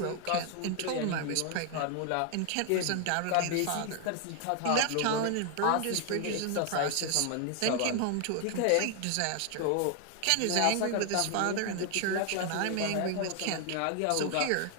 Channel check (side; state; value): both; different; correlation 0.00